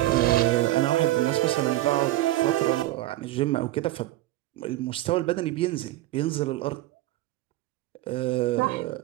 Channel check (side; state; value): left; quieter; 16.2 dB